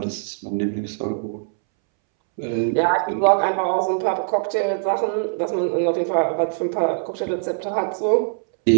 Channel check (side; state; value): left; silent; 64 dB below the other